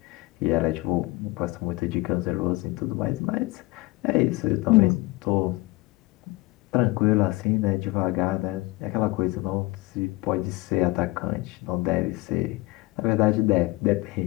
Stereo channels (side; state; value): right; quieter; 22.4 dB